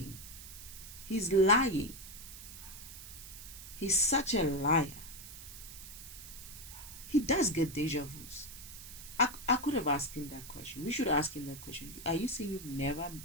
He's lying. He's such a liar. He does get deja vus. I could have asked him that question. We should ask him that question. Are you saying you've never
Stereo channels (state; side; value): noise; right; hiss, 13 dB below the sound